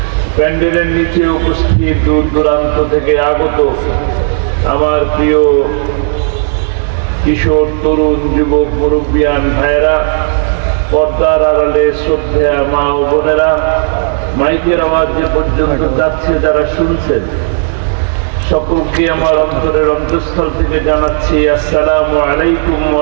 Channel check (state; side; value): silent; left; digital silence